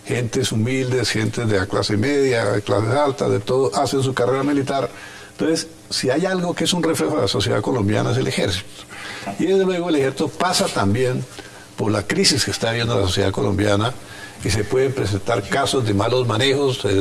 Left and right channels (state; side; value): identical; both; correlation 1.00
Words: gentes humildes, gentes de la clase media, de clases altas, de todo, hacen su carrera militar. Entonces, si hay algo que es un reflejo de la sociedad colombiana es el ejército. Y desde luego el ejército pasa también por la crisis que está viviendo la sociedad colombiana, y se pueden presentar casos de malos manejos